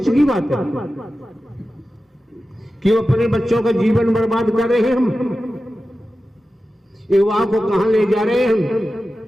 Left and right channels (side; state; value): both; normal; correlation 0.93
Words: की बात है। क्यों अपने बच्चों का जीवन बर्बाद कर रहे हैं हम? युवा को कहां ले जा रहे हैं हम?